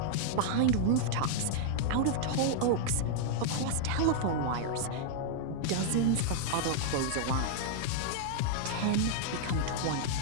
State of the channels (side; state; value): both; different; correlation -0.01